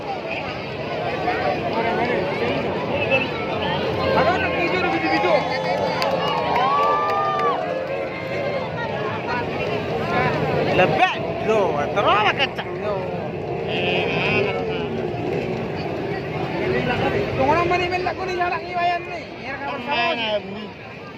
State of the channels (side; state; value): both; identical; correlation 1.00